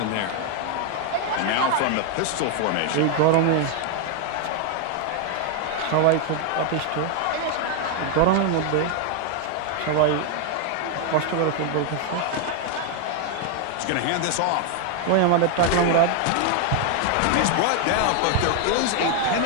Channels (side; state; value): both; different; correlation 0.00